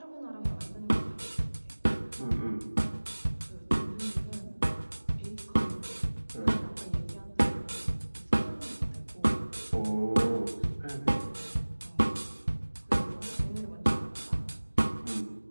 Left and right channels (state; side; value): inverted; both; correlation -1.00